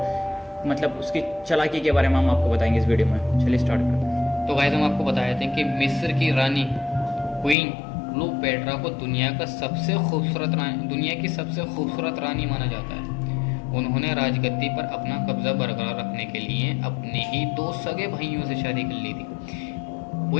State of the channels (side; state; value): right; drops out; at 7.6 s